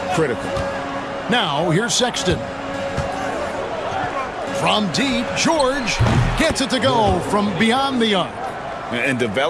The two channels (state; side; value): identical; both; correlation 1.00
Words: critical. Now, here's Sexton. From deep, George gets it to go from beyond the arc. And